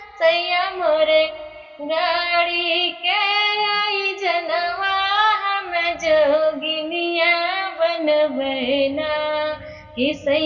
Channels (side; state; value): both; identical; correlation 1.00